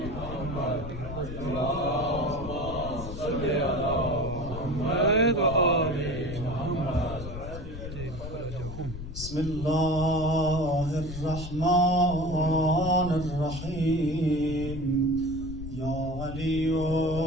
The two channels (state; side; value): noise; left; rumble, 9 dB below the sound